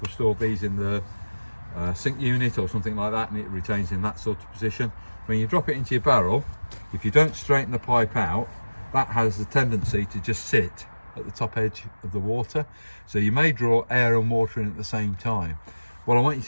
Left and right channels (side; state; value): both; inverted; correlation -1.00